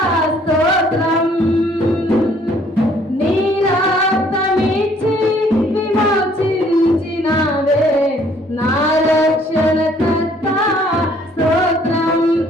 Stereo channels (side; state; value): both; normal; correlation 0.61